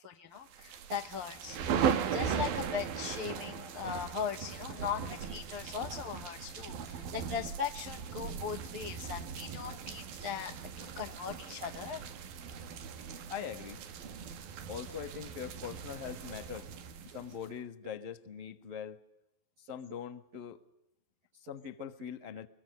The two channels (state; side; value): late; left; 12 ms